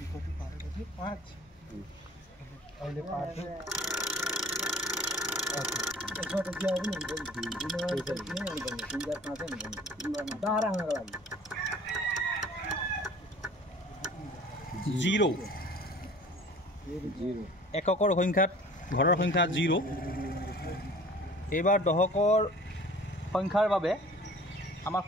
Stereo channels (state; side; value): normal; both; correlation 0.47